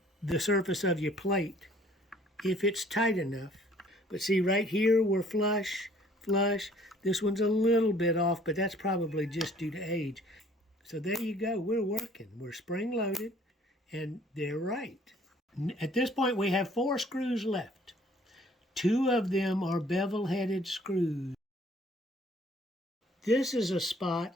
the surface of your plate if it's tight enough. But see, right here we're flush. This one's a little bit off, but that's probably just due to age. So there you go. We're working. We're spring-loaded, and they're right. At this point, we have 4 screws left. 2 of them are bevel-headed screws. This is a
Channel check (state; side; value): normal; both; correlation 0.57